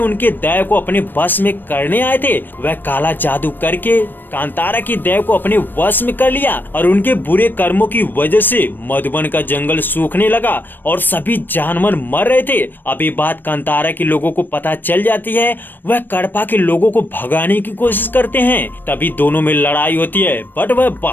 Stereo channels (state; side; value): late; right; 0.093 ms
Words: दैव को अपने बस में करने आए थे। वह काला जादू करके कांतारा की दैव को अपने वश में कर लिया और उनके बुरे कर्मों की वजह से मधुबन का जंगल सूखने लगा और सभी जानवर मर रहे थे। अब ये बात कांतारा के लोगों को पता चल जाती है। वह कडप्पा के लोगों को भगाने की कोशिश करते हैं। तभी दोनों में लड़ाई होती है, बट वह